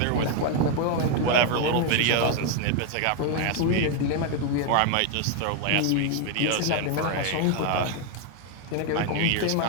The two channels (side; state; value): both; different; correlation 0.01